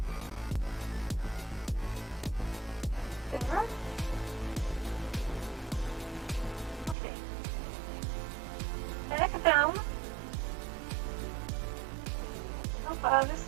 There. Okay. Back down. This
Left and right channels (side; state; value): left; drops out; at 7.0 s